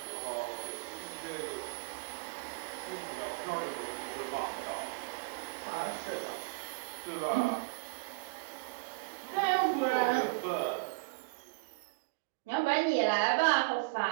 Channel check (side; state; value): left; quieter; 29.5 dB